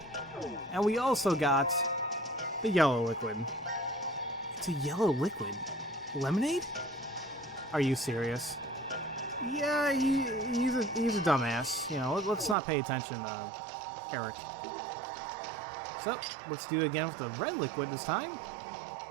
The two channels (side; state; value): left; drops out; at 12.6 s